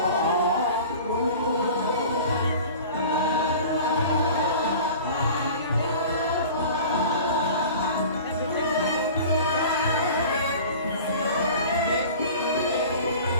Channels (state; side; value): inverted; both; correlation -0.40